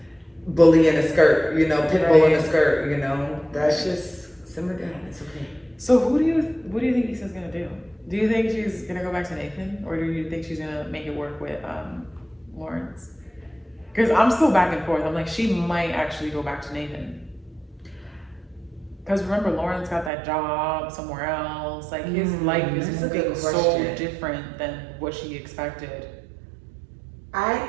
bully in a skirt, pit bull in a skirt, That's just simmer down. It's okay. So what do you think Issa's gonna do? Do you think she's gonna go back to Nathan, or do you think she's gonna make it work with Lawrence? Because I'm still back and forth. I'm like, she might actually go back to Nathan. Because remember, Lawrence got that job somewhere else. Like his life is moving so different than what she expected. I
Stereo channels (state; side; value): drops out; left; at 20.1 s